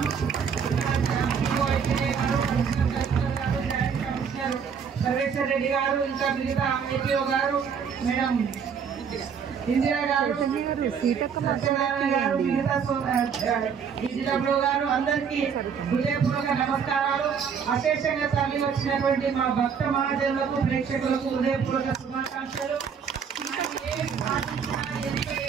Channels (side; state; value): left; quieter; 6.8 dB